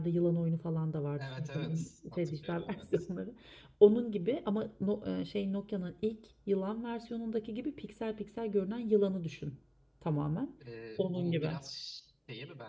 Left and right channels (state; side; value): identical; both; correlation 1.00